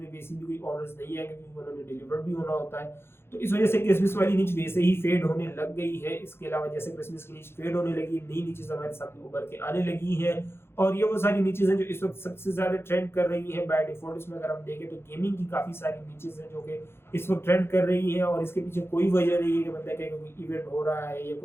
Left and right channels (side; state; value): right; late; 0.12 ms